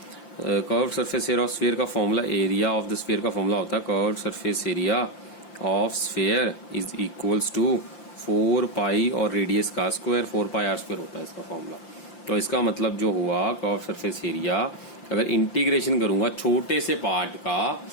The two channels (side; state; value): right; late; 5.8 ms